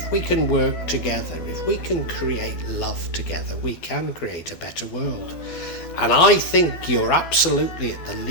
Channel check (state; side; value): late; right; 12 ms